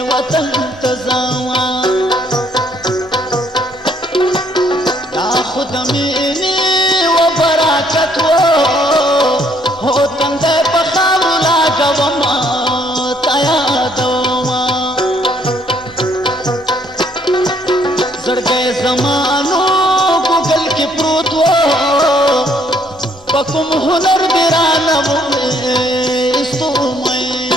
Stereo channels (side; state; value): both; normal; correlation 0.66